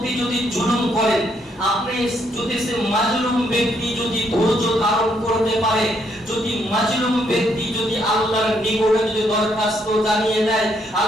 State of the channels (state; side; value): normal; both; correlation 0.73